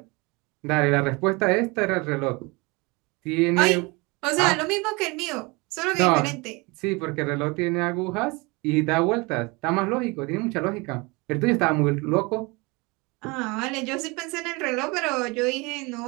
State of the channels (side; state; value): left; quieter; 26.4 dB